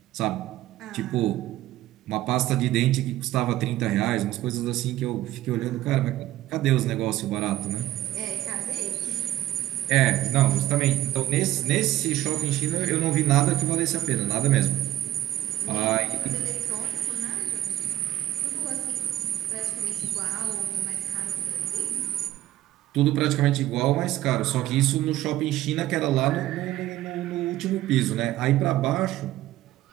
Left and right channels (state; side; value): quieter; left; 14.2 dB